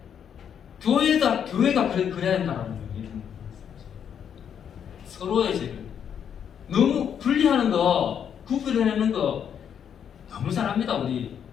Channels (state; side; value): quieter; right; 8.3 dB